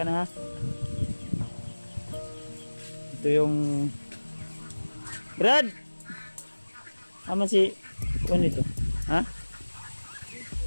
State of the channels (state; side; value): inverted; both; correlation -1.00